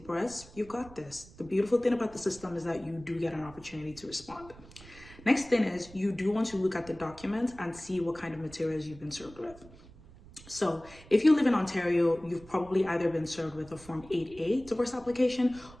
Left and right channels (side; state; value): right; noise; rumble, 20 dB below the sound